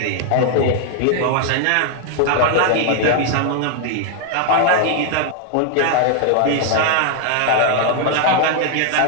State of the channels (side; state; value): both; different; correlation 0.00